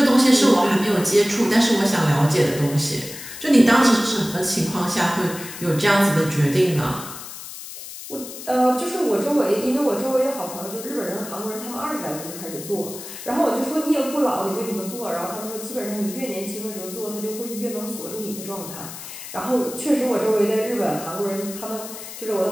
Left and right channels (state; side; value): noise; left; hiss, 12 dB below the sound